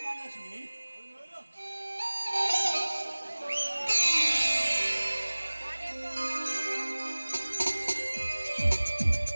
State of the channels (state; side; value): inverted; both; correlation -1.00